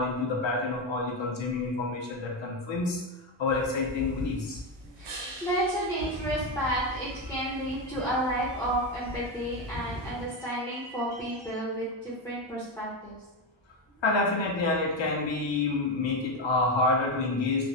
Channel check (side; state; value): both; normal; correlation 0.11